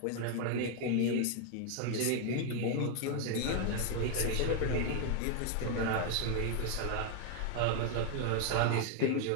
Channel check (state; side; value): different; both; correlation 0.00